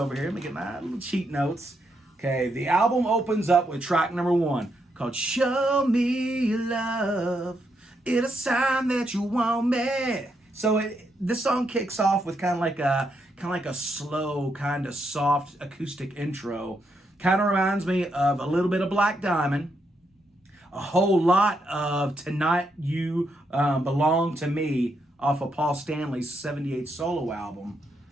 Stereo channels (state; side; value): normal; both; correlation 0.80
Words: here. Let me get my little cheat notes. Okay, the album opens up with track number 1 called Show Me Your Love. It's a sign that you want me. So this song kicks off with kind of like a slow, kind of soft acoustic intro. Kind of reminds me of a little bit of Black Diamond. A whole lot of Tonight You Belong to Me off of Paul Stanley's 78 solo album.